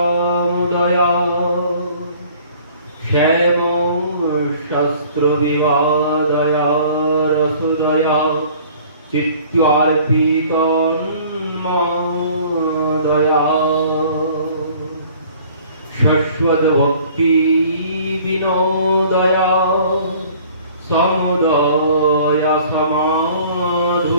শ্যাম শাস্ত্র বিবাদয়া রসোদয়া চিত্তার্পিতন্মদয়া শাশ্বত ভক্তি বিনোদয়া সমদয়া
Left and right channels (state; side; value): inverted; both; correlation -0.52